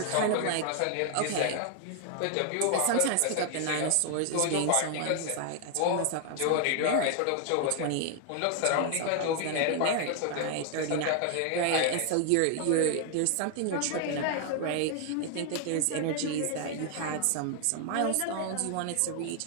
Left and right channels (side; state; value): both; different; correlation 0.00